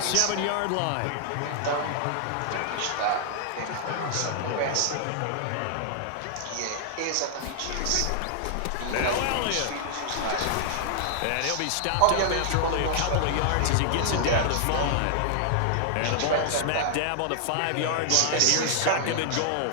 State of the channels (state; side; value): different; both; correlation 0.00